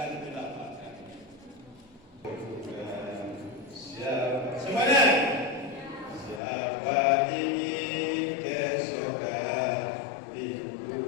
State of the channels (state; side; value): drops out; right; at 6.4 s